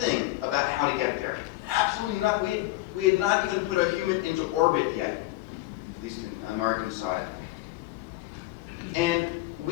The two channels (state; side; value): quieter; right; 18.5 dB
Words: about how to get there. Absolutely nothing. We had not even put a human into orbit yet, at least in the American side. And